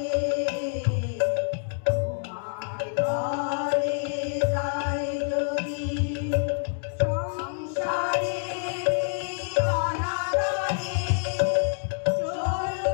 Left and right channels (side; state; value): right; silent; digital silence